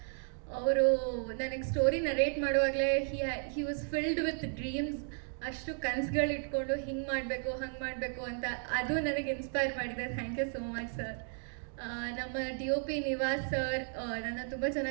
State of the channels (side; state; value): left; silent; 55 dB below the other